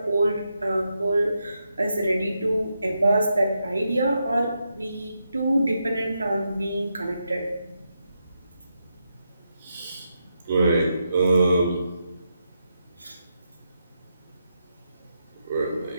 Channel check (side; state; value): both; inverted; correlation -0.84